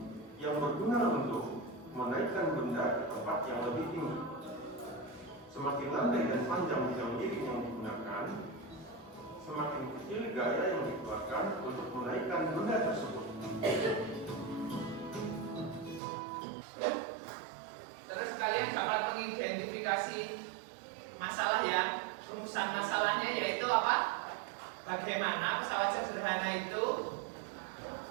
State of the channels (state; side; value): drops out; left; at 16.0 s